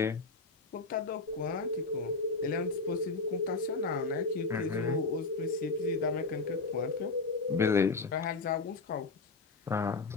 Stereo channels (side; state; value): right; quieter; 3.9 dB